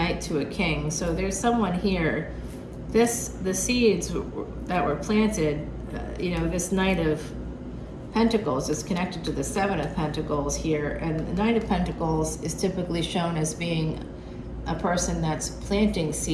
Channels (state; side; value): identical; both; correlation 1.00